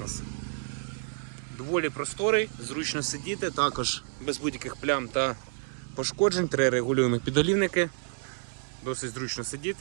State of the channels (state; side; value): silent; left; 58 dB below the other